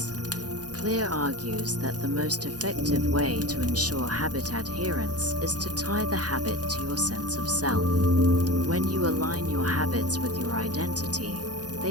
Clear argues that the most effective way to ensure habit adherence is to tie the habit to your sense of self. When you align your habits with your identity,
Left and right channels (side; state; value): left; late; 0.68 ms